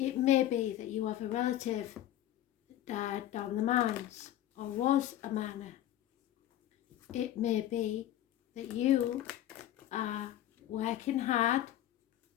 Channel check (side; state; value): right; quieter; 12.8 dB